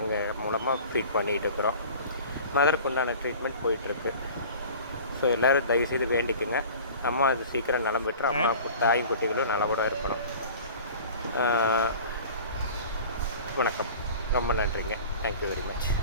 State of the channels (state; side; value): inverted; both; correlation -0.42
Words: மூலமாக ஃபீட் பண்ணிகிட்டு இருக்கிறோம். மதருக்கு உண்டான ட்ரீட்மெண்ட் போயிட்டுருக்கு. ஸோ எல்லோரும் தயவுசெய்து வேண்டிக்குங்க, அம்மா அது சீக்கிரம் நலம் பெற்று அம்மா தாயும் குட்டிகளும் நலவோட இருக்கணும். வணக்கம், ரொம்ப நன்றிங்க. Thank you very much.